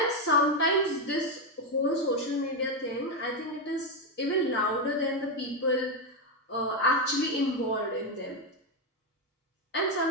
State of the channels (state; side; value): normal; both; correlation 0.06